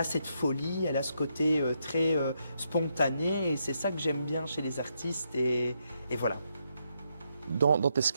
cette folie, elle a ce côté très spontané, et c'est ça que j'aime bien chez les artistes, et voilà. Dans tes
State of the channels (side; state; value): both; inverted; correlation -0.80